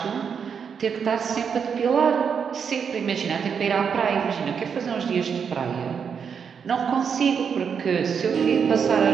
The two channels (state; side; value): quieter; left; 6.8 dB